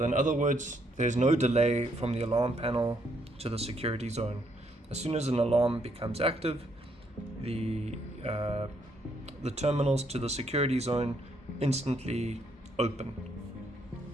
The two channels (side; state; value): both; normal; correlation 0.72